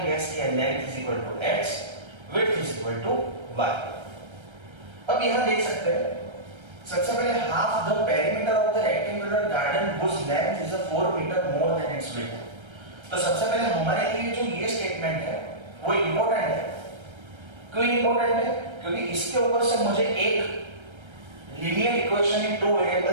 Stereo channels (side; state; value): left; late; 1.3 ms